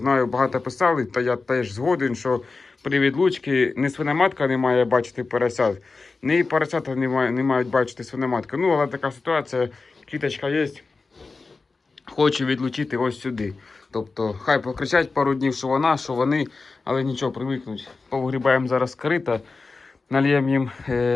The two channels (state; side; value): quieter; right; 4.0 dB